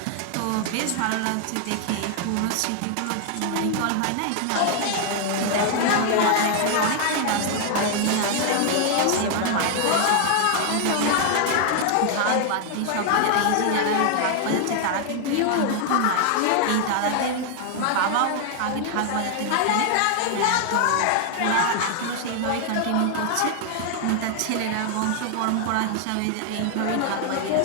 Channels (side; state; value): both; different; correlation 0.00